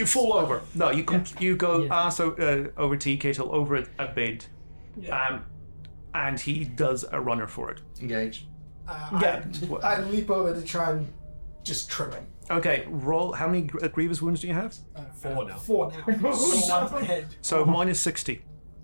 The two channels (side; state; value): both; inverted; correlation -1.00